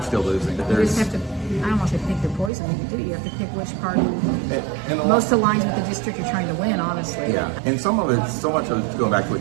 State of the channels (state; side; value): drops out; left; at 2.5 s